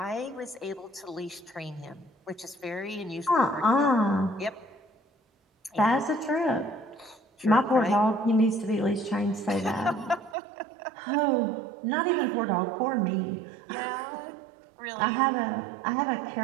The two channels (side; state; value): left; drops out; at 10.4 s